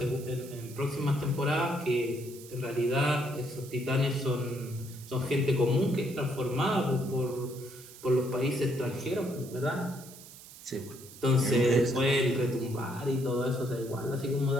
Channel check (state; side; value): noise; right; hiss, 18 dB below the sound